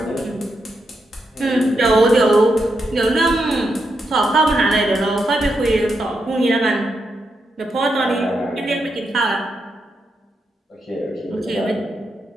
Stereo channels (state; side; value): normal; both; correlation 0.83